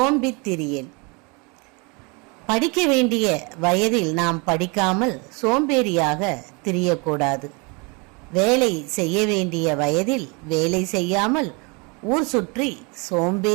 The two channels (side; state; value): left; quieter; 30.4 dB